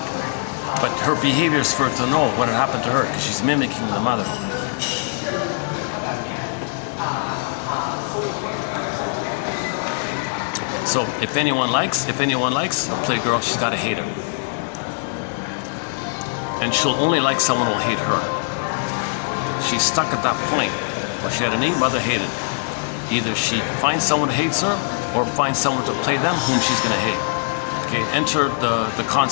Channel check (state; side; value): silent; right; digital silence